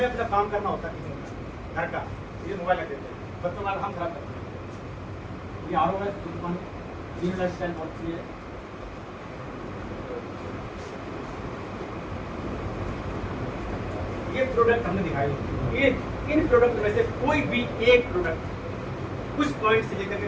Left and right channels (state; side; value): identical; both; correlation 1.00